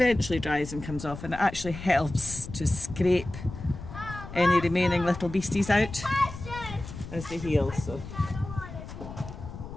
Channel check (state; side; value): noise; left; rumble, 11 dB below the sound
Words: dries and comes off, and it actually helps to scrape any remaining little beasties out as they heal. So